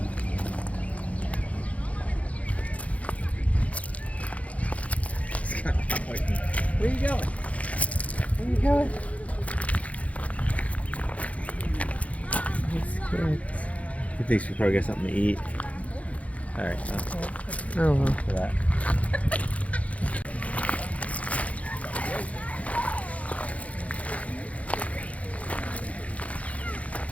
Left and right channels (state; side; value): late; right; 0.066 ms